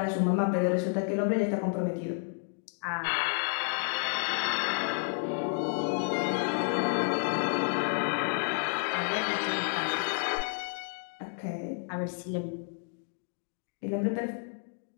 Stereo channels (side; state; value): right; silent; 57 dB below the other